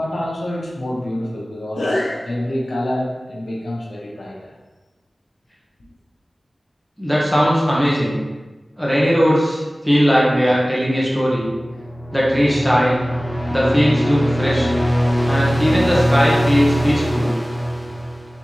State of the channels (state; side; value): normal; both; correlation 0.97